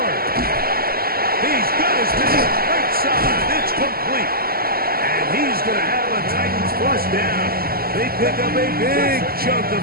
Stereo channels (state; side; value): late; left; 0.44 ms